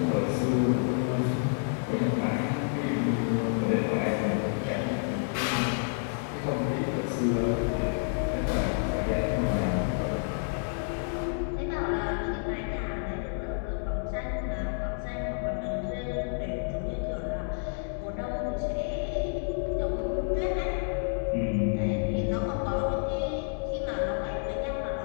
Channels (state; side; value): silent; right; digital silence